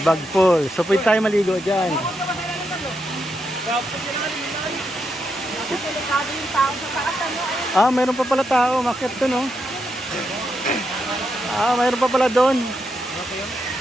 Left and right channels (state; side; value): normal; both; correlation 0.82